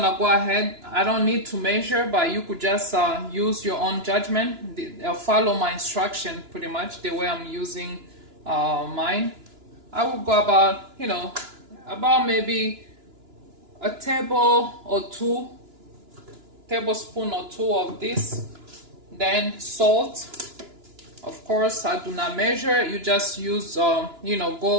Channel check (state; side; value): late; left; 2.9 ms